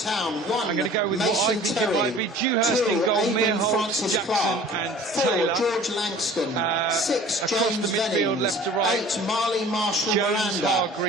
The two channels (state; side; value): normal; both; correlation 0.46